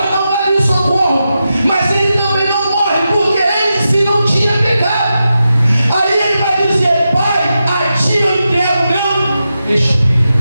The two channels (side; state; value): both; inverted; correlation -0.89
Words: não vai vir socorro. Mas ele também não morre, porque ele em si não tinha pecado. Aí ele vai dizer: Pai, a ti eu entrego o meu espírito.